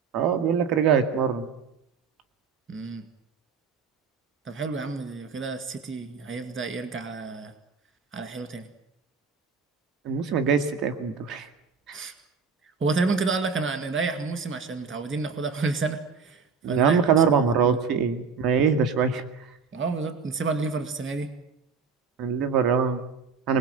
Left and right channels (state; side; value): quieter; left; 5.6 dB